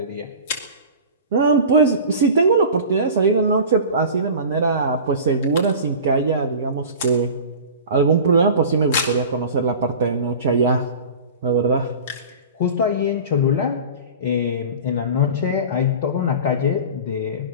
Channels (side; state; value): both; inverted; correlation -0.37